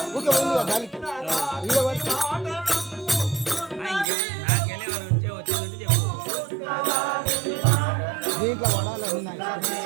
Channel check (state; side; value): drops out; left; at 4.0 s